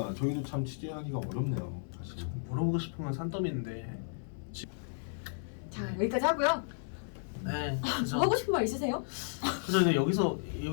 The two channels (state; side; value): silent; right; 55 dB below the other